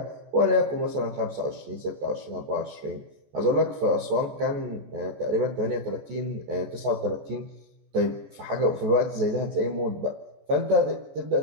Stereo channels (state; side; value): late; left; 14 ms